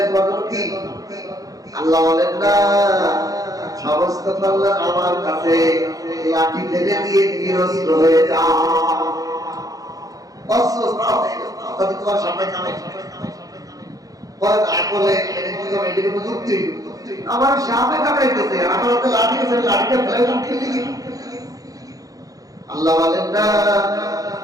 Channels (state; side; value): late; left; 0.17 ms